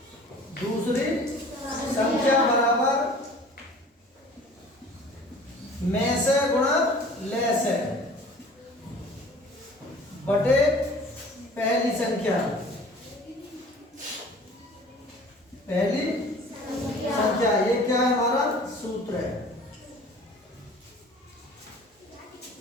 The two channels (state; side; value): normal; both; correlation 0.46